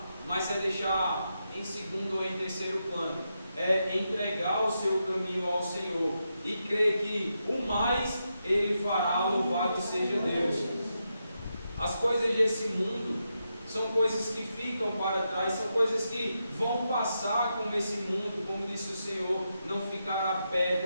mas é deixar em segundo ou em terceiro plano. É entregar o seu caminho ao Senhor e crer que o mais Ele fará, louvado seja Deus. As coisas desse mundo são coisas que ficam para trás, são coisas que vão passar com esse mundo, como disse o Senhor, não ficará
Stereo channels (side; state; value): both; inverted; correlation -0.85